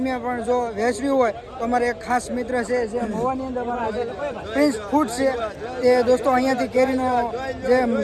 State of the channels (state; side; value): identical; both; correlation 1.00